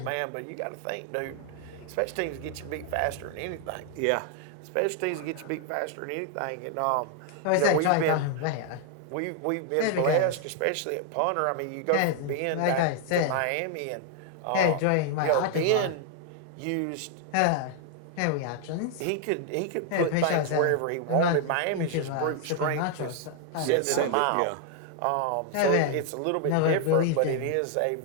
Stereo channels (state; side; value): different; both; correlation 0.00